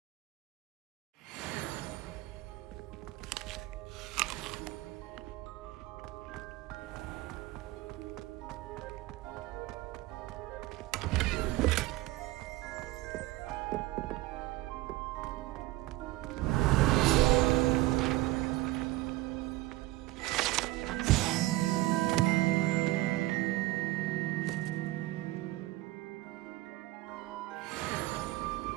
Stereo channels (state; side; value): quieter; left; 18.0 dB